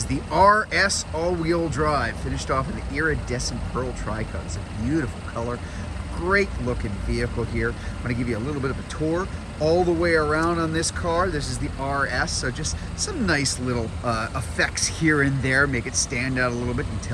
the RS all-wheel drive, finished off in the iridescent pearl tri-coat. It's a beautiful color, great looking vehicle here. I'm going to give you a little bit of a tour all the way around on this car. This is the RS, so just some nice little effects here and there, make it stand out a little bit. You can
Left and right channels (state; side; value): identical; both; correlation 1.00